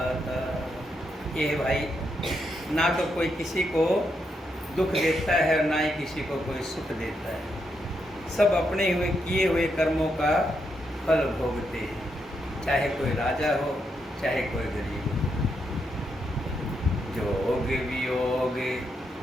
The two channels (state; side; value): normal; both; correlation 0.81